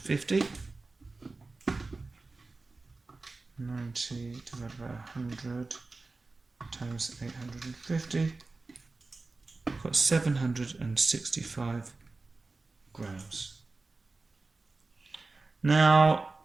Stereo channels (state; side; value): quieter; left; 3.6 dB